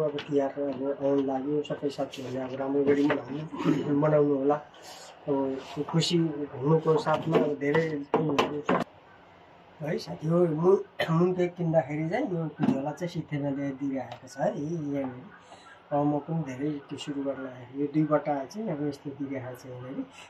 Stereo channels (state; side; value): identical; both; correlation 1.00